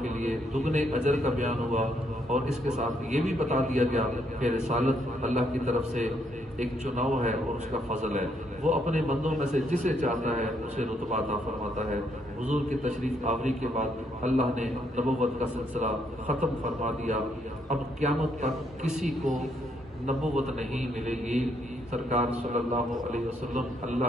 کے لیے دگنے اجر کا بیان ہوا، اور اس کے ساتھ یہ بھی بتا دیا گیا کہ رسالت اللہ کی طرف سے ایک چناؤ ہے اور اس کا فضل ہے، وہ اپنے بندوں میں سے جسے چاہتا ہے اسے رتبہ عطا فرماتا ہے۔ حضور کی تشریف آوری کے بعد اللہ نے نبوت کا سلسلہ ختم فرما دیا۔ اب قیامت تک کسی کو نبوت نہیں ملے گی۔ سرکار صلی اللہ علیہ وسلم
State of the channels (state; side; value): normal; both; correlation 0.73